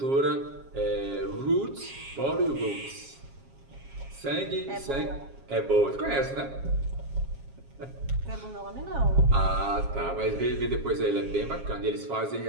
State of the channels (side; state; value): left; late; 7.4 ms